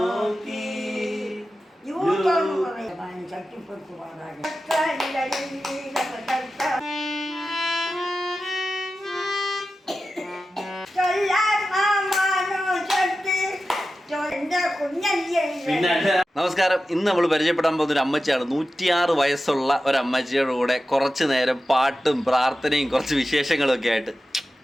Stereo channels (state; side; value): normal; both; correlation 0.93